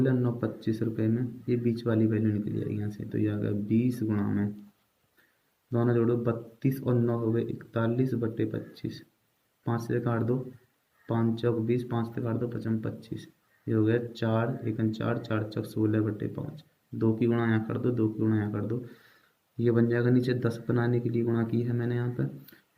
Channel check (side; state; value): both; identical; correlation 1.00